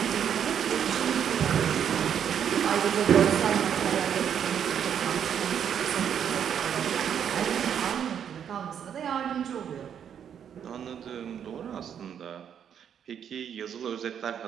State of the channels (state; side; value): quieter; left; 8.5 dB